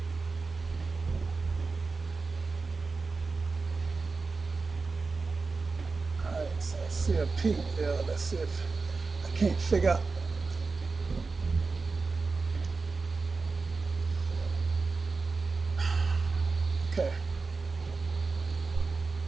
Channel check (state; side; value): quieter; left; 4.2 dB